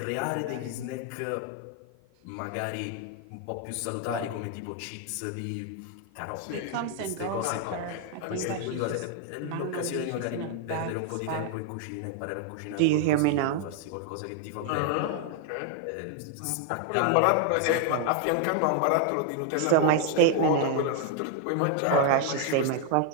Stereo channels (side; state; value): both; different; correlation 0.00